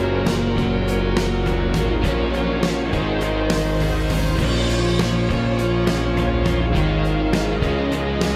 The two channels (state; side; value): identical; both; correlation 1.00